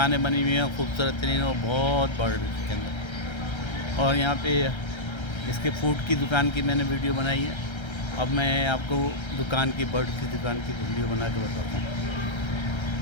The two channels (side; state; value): right; late; 1.3 ms